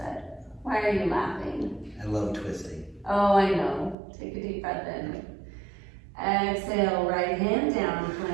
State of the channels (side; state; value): left; drops out; at 4.0 s